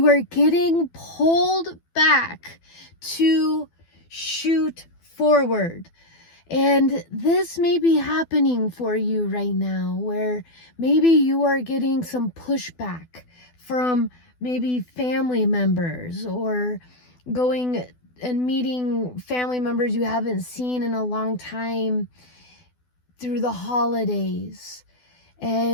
are getting pulled back to shoot forward. And this may be happening for you right now, where maybe you are getting some pushback from maybe family members, or going and meeting family members you haven't seen in a long time through the holidays.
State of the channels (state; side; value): late; right; 12 ms